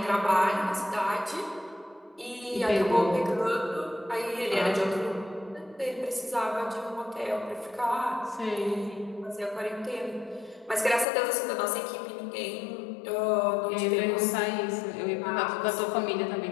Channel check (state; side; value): drops out; right; at 11.1 s